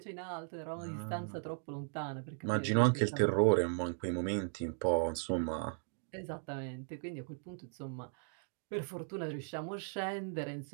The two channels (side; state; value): left; silent; digital silence